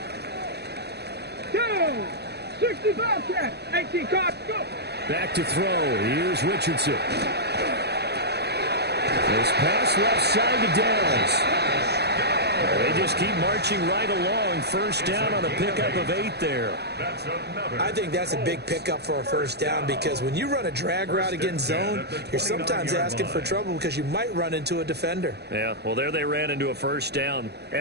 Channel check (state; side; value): late; left; 0.48 ms